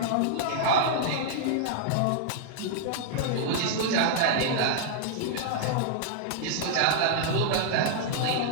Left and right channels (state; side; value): different; both; correlation -0.01